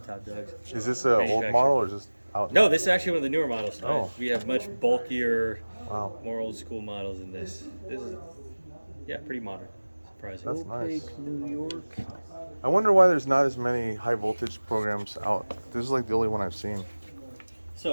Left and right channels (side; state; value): both; inverted; correlation -1.00